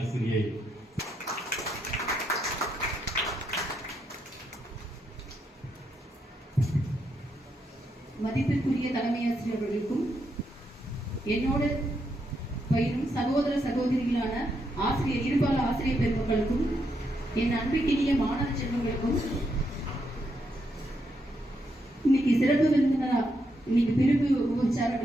மதிப்பிற்குரிய தலைமை ஆசிரியர் அவர்களுக்கும் என்னோடு பயிரும் சகோதர சகோதரிகளான இருபால ஆசிரியர் பெருமக்களுக்கும் என் அன்பிற்கினிய மாணவ செல்வங்களுக்கும் இன்னைக்கு சிறப்பு விருந்தினரா இன்னைக்கு பிரிவு உற்சார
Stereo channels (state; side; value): normal; both; correlation 0.80